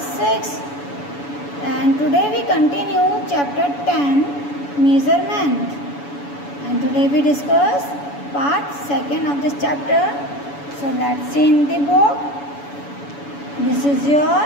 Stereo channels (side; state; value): right; late; 7.0 ms